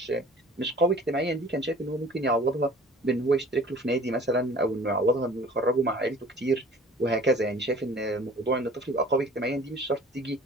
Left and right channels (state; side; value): normal; both; correlation 0.48